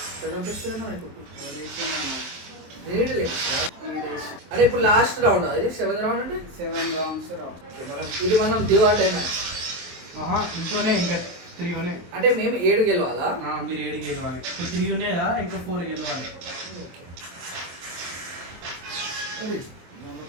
అదే ఇప్పుడు లాస్ట్ రౌండ్ అది 7th రౌండ్ అంటే 7 rounds రా. ఇది మనం డివైడ్ అయినా ఇంట్లోనే ఇంకా 3 ఉన్నాయి. అంటే మేము 7 గెలవాలా? మీరు 7 గెలవాలి. ఇప్పుడు 3 ఉన్నాయి కదా, ఇంకా 4 గెలవాలి.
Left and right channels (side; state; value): left; late; 23 ms